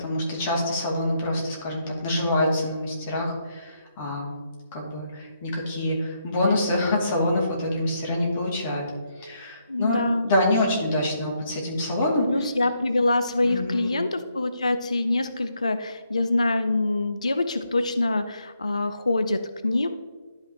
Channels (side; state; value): both; inverted; correlation -0.77